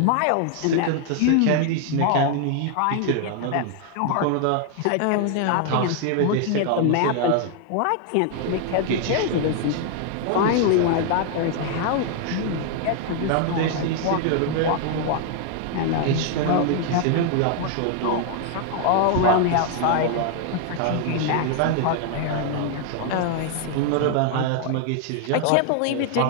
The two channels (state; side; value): different; both; correlation 0.00